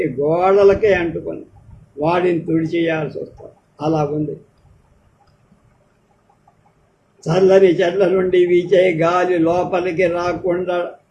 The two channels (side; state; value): both; identical; correlation 1.00